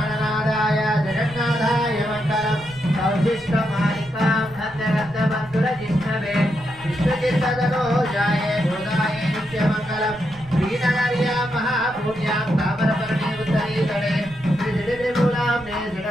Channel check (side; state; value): right; noise; rumble, 21 dB below the sound